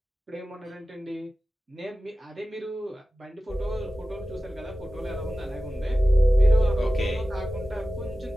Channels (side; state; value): both; normal; correlation 0.95